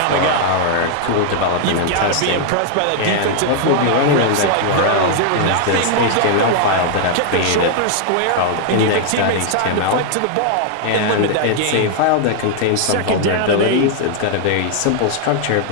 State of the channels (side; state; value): both; different; correlation 0.00